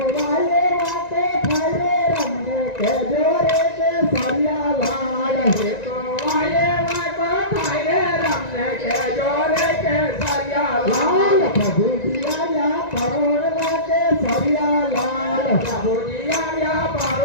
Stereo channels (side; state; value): right; late; 1.9 ms